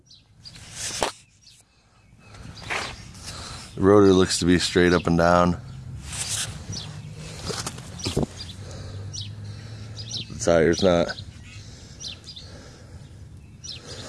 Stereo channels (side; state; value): both; identical; correlation 1.00